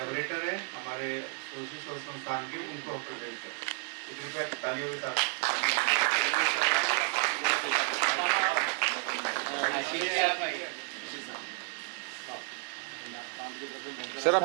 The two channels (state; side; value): quieter; left; 37.3 dB